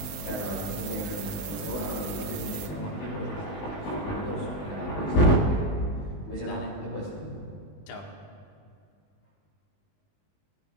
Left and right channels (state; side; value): late; right; 19 ms